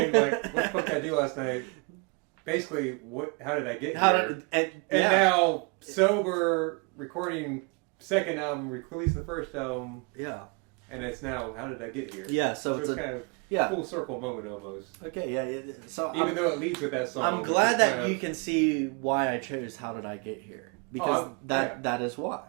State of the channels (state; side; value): quieter; left; 32.6 dB